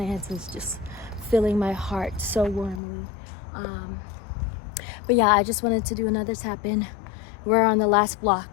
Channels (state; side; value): drops out; right; at 2.8 s